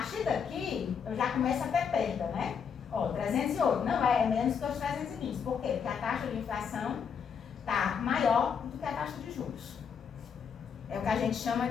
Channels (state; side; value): quieter; right; 6.9 dB